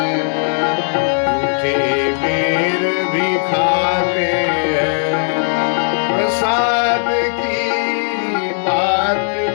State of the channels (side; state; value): right; silent; digital silence